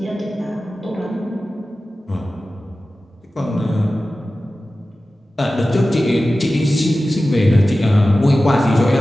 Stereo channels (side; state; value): both; normal; correlation 0.95